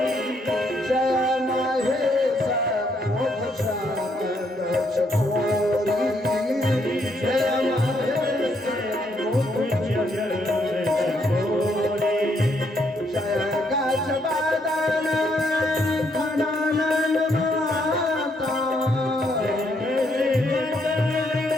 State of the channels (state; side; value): normal; both; correlation 0.73